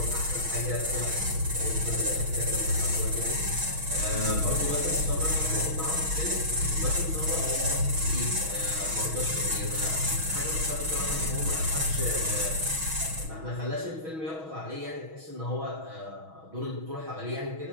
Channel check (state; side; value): late; left; 6.3 ms